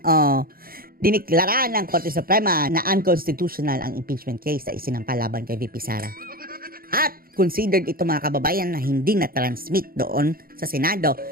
diniklara ng Korte Suprema na unconstitutional ang impeachment case na isinampa laban kay VP Sara. At considered ito mga kababayan na hindi na-transmit doon sa Senado.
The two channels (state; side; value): late; left; 0.43 ms